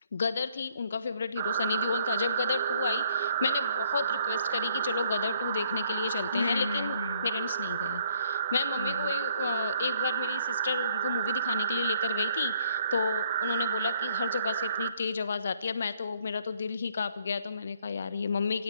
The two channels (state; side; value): inverted; both; correlation -0.65